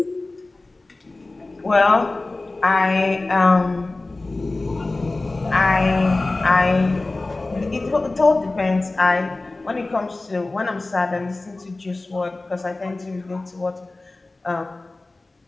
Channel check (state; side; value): quieter; right; 3.1 dB